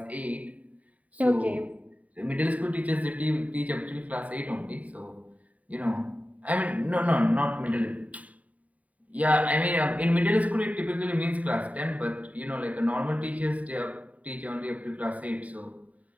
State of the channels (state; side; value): late; left; 0.070 ms